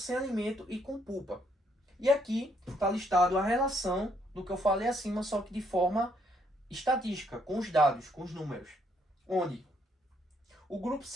alimento e com pulpa. E aqui está listado a relação do que eu falei acima, só que de forma estatística, com os dados, com os números. Onde o grupo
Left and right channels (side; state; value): both; normal; correlation 0.71